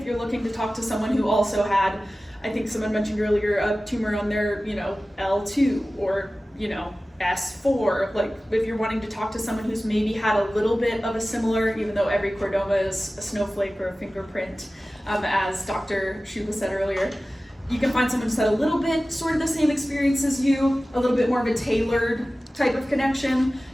you're looking to talk to someone who also had, I think someone mentioned earlier, a tumor on their, L2 or, S4. Like if you're wanting to talk to someone who's maybe had a little bit of a similar, even though every chordoma is a snowflake or a fingerprint, as Dr. Shuba said earlier, you can find someone who's had a little bit sort of the same experience as you, a little bit more of a tailored type of connection.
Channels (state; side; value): normal; both; correlation 0.96